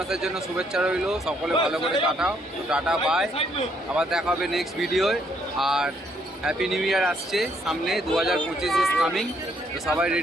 জন্য শুভেচ্ছা রইল। সকলে ভালো করে কাটাও। তো টাটা বাই, আবার দেখা হবে নেক্সট ভিডিওয়। আর হ্যাপি নিউ ইয়ার আসছে সামনে, 2025 ইজ কামিং। তো সবাই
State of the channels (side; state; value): both; normal; correlation 0.70